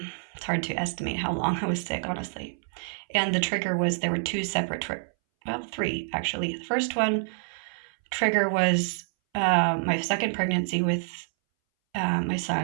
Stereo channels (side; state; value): left; silent; 60 dB below the other